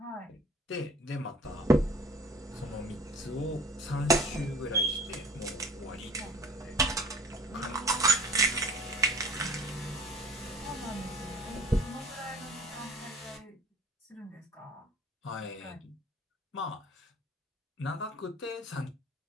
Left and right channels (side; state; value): both; normal; correlation 0.49